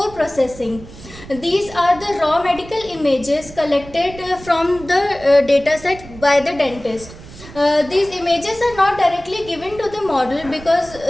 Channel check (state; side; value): noise; right; rumble, 17 dB below the sound